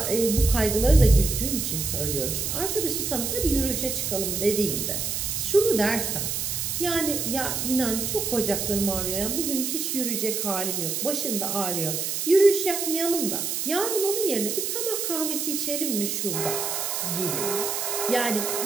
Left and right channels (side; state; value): right; noise; hiss, 1 dB below the sound